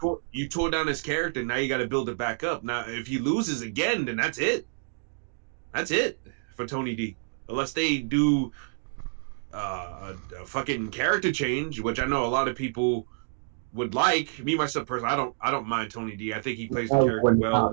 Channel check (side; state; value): left; silent; digital silence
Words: tore down his character. Now you got to build it back up. Now if he loses again, then that's it. That's it for Tony D. Unless they do a fucking character change, which I know a lot of people would like. Me myself personally, I don't mind Tony D. I think he plays the I character would well not. and